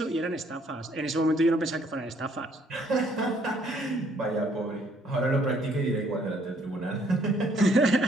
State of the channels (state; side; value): normal; both; correlation 0.65